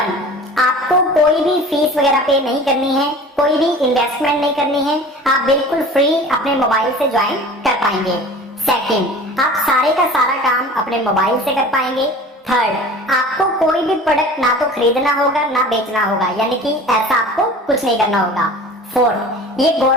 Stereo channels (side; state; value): both; normal; correlation 0.41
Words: आपको कोई भी फीस वगैरह पे नहीं करनी है, कोई भी इन्वेस्टमेंट नहीं करनी है, आप बिल्कुल फ्री अपने मोबाइल से ज्वाइन कर पाएंगे। सेकंड, आप सारे का सारा काम अपने मोबाइल से कर पाएंगे। थर्ड, आपको कोई भी प्रोडक्ट ना तो खरीदना होगा ना बेचना होगा, यानी कि ऐसा आपको कुछ नहीं करना होगा। फोर्थ, ये